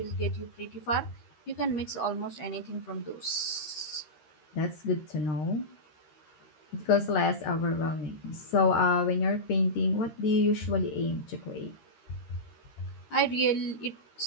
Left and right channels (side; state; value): right; late; 13 ms